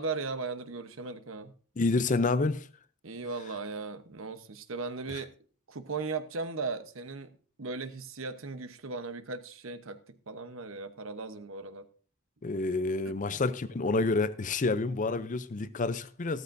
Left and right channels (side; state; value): both; normal; correlation 0.29